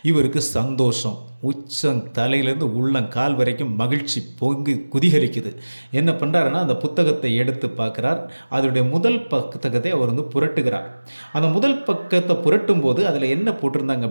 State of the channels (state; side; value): inverted; both; correlation -1.00